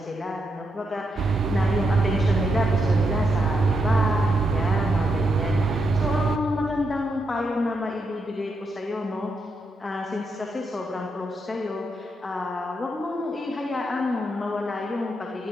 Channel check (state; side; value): normal; both; correlation 0.81